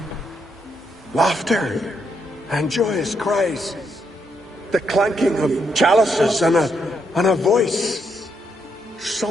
laughter and joyous cries. The clanking of chalices and a voice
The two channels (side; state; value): both; normal; correlation 0.78